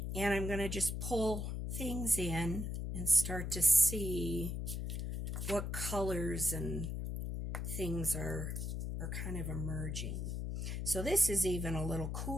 and I'm going to just pull things in and start to see what colors and things are kind of emerging. So this is even a little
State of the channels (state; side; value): noise; left; hum, 3 dB below the sound